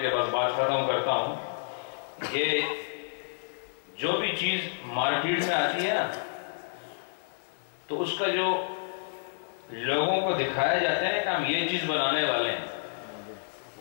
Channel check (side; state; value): right; silent; digital silence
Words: کے بس بات ختم کرتا ہوں. یہ جو بھی چیز مارکیٹ میں آتی ہے نا، تو اس کا جو لوگوں کو دکھایا جاتا ہے کہ ہم یہ چیز بنانے والے ہیں،